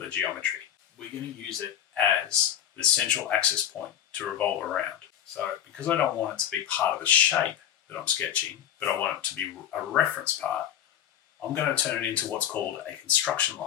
geometry. We're going to use it as the central axis point to revolve around. So because I don't want it to be part of the shape that I'm sketching, but I want it to be a reference part, I'm going to turn it into what's called a construction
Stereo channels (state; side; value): quieter; right; 10.2 dB